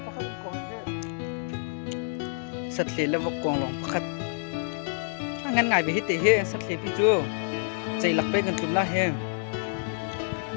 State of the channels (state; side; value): silent; right; digital silence